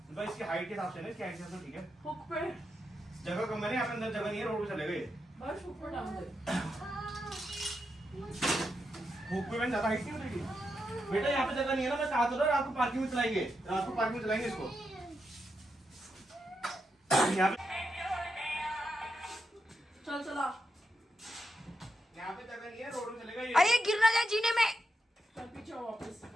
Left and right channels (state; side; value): normal; both; correlation 0.85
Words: भाई इसकी हाइट के हिसाब से ना, इसकी हाइट के हिसाब से ठीक है। हुक पे जगह कम है ना, यहाँ पे अंदर जगह नहीं है, रोड पे चले गए। भावेश हुक पे टांग दे। हुक पे मैंने ज्यादा हाइट नहीं उतरेगी बेटा, यहाँ पे जगह नहीं है ना, मैं कहा तो रात को पार्किंग में चलाएंगे, रात को पार्किंग में चलाएंगे इसको यहाँ पे। चल चला, यहाँ पे जगह नहीं है, रोड में चलेगा ये। अरे गिर ना जाए जीने में। चल पीछे आओ वापस।